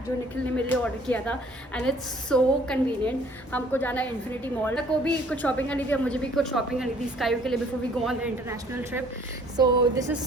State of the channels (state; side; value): normal; both; correlation 0.57